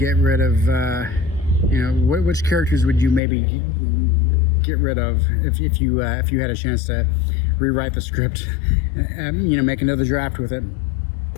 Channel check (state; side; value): drops out; right; at 3.2 s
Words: rid of, you know, which characters would you maybe get rid of if you had a chance to rewrite the script, you know, make another draft with it.